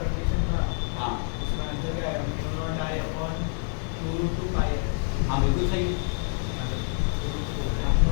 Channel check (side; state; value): right; silent; 60 dB below the other